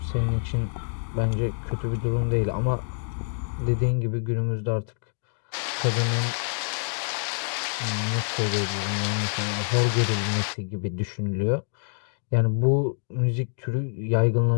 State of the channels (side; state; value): right; silent; digital silence